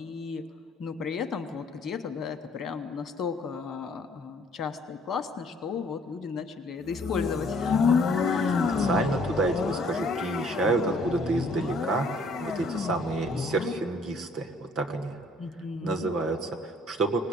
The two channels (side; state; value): both; normal; correlation 0.60